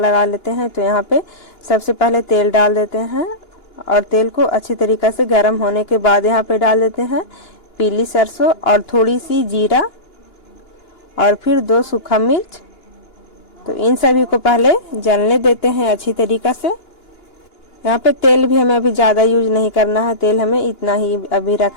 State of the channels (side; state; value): right; late; 2.9 ms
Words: लेते हैं। तो यहाँ पे सबसे पहले तेल डाल देते हैं और तेल को अच्छी तरीके से गर्म होने के बाद यहाँ पे डाल देते हैं पीली सरसों और थोड़ी सी जीरा और फिर 2 सूखा मिर्च। तो इन सभी को पहले जलने देते हैं अच्छी तरीके से। यहाँ पे तेल भी हमें अभी ज़्यादा यूज नहीं करना है, तेल हमें इतना ही अभी